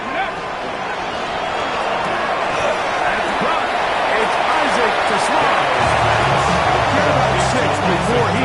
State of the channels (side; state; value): both; identical; correlation 1.00